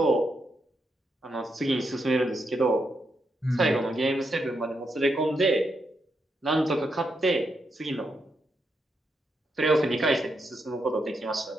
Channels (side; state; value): both; normal; correlation 0.82